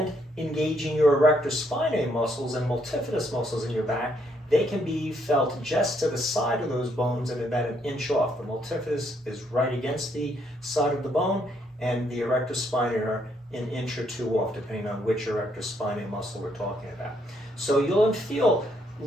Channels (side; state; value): both; normal; correlation 0.72